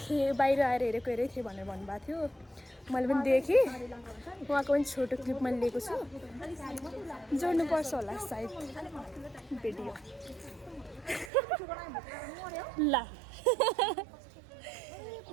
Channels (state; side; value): drops out; left; at 11.3 s